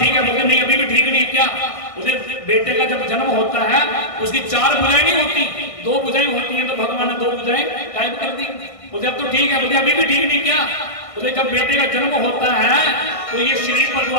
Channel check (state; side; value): late; right; 1.6 ms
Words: है। बोले नहीं अभी भी ठीक नहीं। क्या? उसे बेटे का जब जन्म होता है उसकी 4 भुजाएं नहीं होती, 2 भुजाएं होती हैं। तो भगवान ने 2 भुजाएं गायब कर दी। बोले अब तो ठीक है। बोले अभी भी ठीक नहीं। क्या? बोले जब बेटे का जन्म होता है तो ये शरीर पर जो